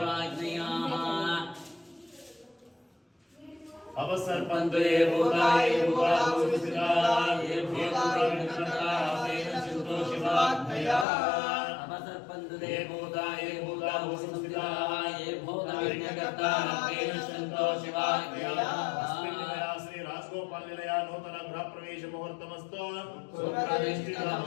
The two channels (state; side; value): drops out; right; at 11.1 s